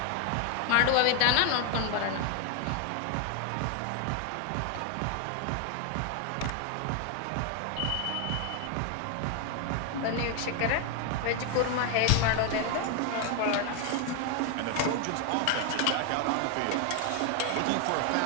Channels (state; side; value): different; both; correlation 0.01